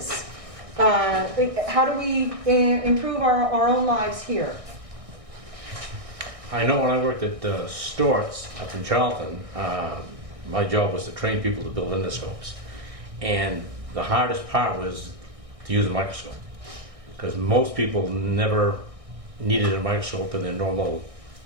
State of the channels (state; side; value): late; left; 1.6 ms